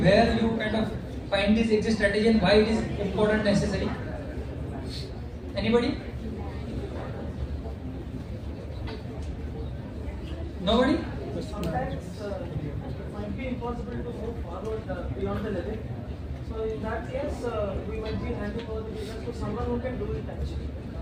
you kind of find this exit strategy and why it is important, necessary? Anybody? Nobody? Sometimes it might be impossible to move forward beyond the limit. So in that case, we might be handing over the business to someone who can do it actually.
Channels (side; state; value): both; identical; correlation 1.00